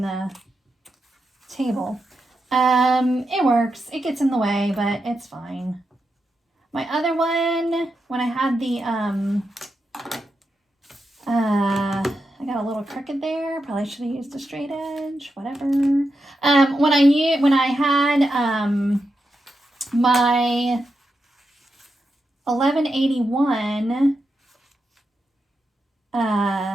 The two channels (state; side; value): normal; both; correlation 0.87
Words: the table. It works. It gets in the way, but it's fine. My other one, when I had the, I got a little crooked there. Probably should have used a straight edge, whatever. When I had, my 1181,